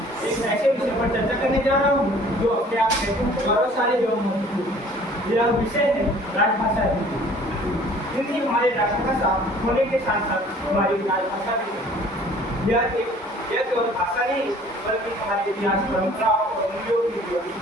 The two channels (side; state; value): both; normal; correlation 0.52